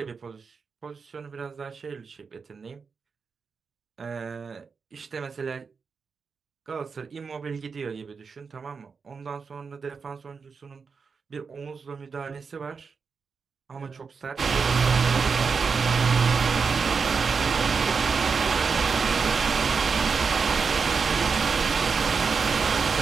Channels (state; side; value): quieter; left; 5.3 dB